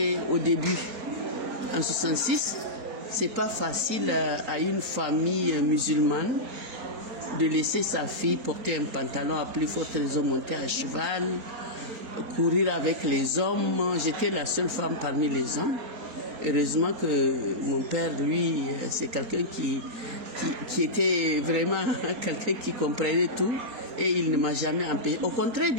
au début. En 1966, c'est pas facile à une famille musulmane de laisser sa fille porter un pantalon à plus forte raison, monter à cheval, courir avec les hommes. J'étais la seule femme parmi les hommes. Heureusement que mon père, lui, c'est quelqu'un qui était vraiment quelqu'un qui comprenait tout et il ne m'a jamais empêché. Au contraire,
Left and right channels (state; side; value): late; left; 4.3 ms